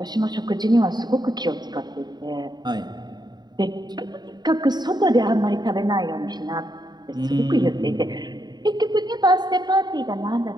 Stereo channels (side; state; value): left; late; 0.20 ms